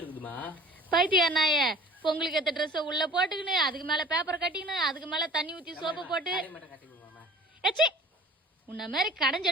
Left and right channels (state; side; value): normal; both; correlation 0.46